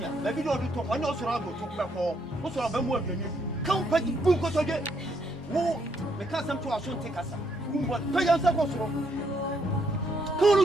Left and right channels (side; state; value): both; normal; correlation 0.73